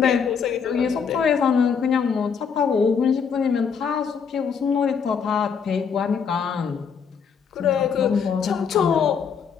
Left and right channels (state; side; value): quieter; right; 6.5 dB